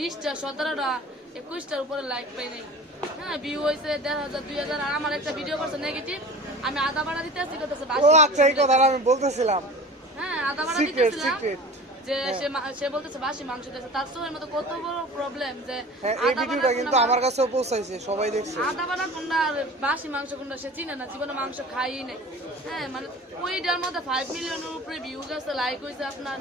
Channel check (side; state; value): both; normal; correlation 0.39